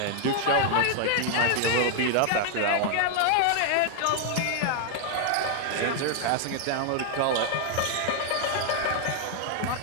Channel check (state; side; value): different; both; correlation 0.00